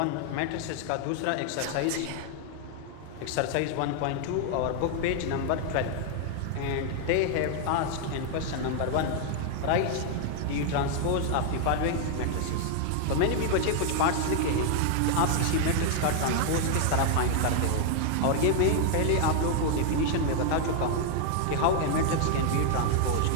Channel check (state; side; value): different; both; correlation 0.00